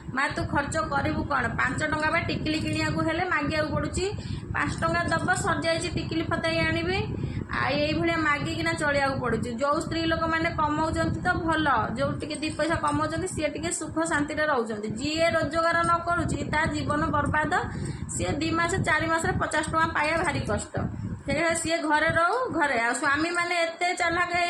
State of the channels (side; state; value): both; identical; correlation 1.00